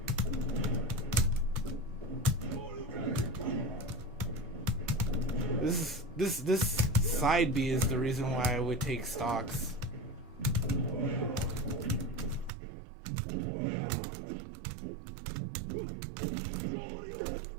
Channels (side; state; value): left; drops out; at 12.5 s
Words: This side B is the reason why I would take stocks.